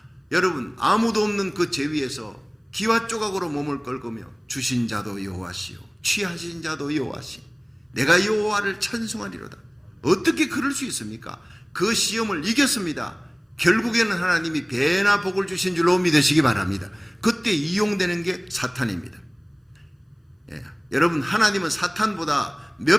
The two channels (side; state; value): both; identical; correlation 1.00